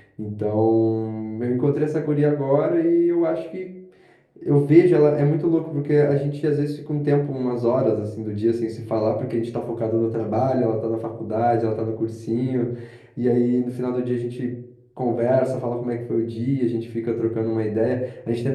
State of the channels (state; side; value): identical; both; correlation 1.00